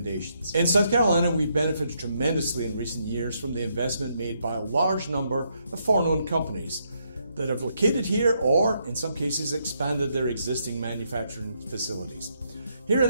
In South Carolina, we've benefited tremendously in recent years from the investment made by a large number of foreign-owned companies that have located here or, in some cases, expanded their existing manufacturing facilities. Here at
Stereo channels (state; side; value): inverted; both; correlation -0.76